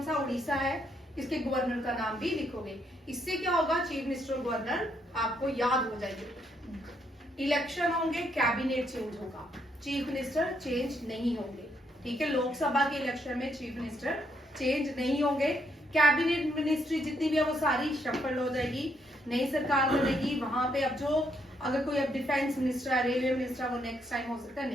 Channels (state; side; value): normal; both; correlation 0.74